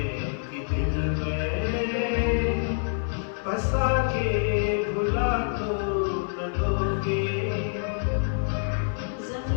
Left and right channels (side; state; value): right; silent; 58 dB below the other